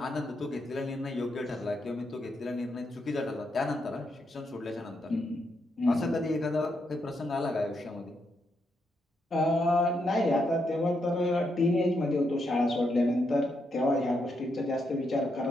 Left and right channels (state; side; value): normal; both; correlation 0.80